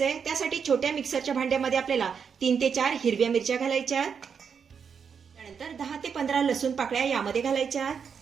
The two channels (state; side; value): quieter; left; 6.6 dB